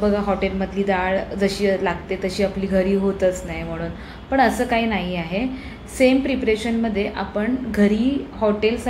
बघा हॉटेलमधली डाळ जशी लागते तशी आपली घरी होतच नाही म्हणून. पण असं काही नाही आहे. सेम प्रिपरेशनमध्ये आपण घरी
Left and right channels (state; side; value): identical; both; correlation 1.00